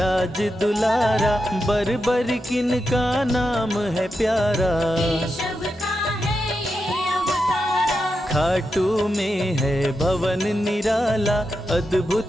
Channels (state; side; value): normal; both; correlation 0.87